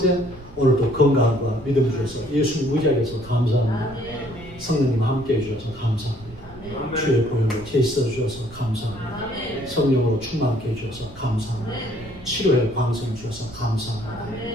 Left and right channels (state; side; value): noise; right; rumble, 19 dB below the sound